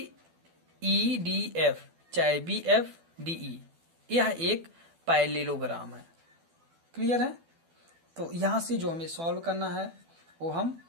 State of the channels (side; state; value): left; late; 12 ms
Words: चाहे BFDE यह एक पैरेललोग्राम है। क्लियर है? तो यहां से जो हमें सॉल्व करना है वो हम